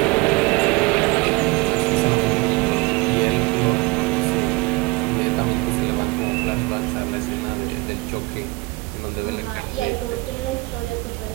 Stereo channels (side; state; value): left; quieter; 24.8 dB